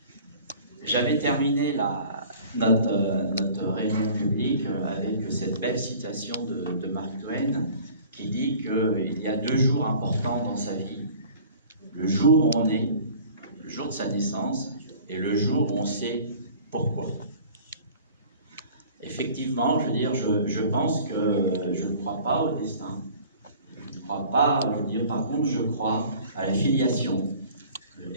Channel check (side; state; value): both; inverted; correlation -0.47